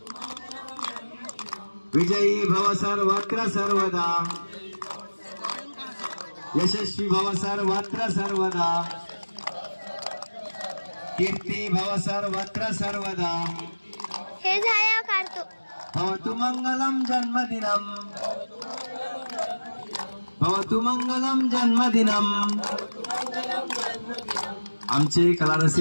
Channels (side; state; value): both; inverted; correlation -1.00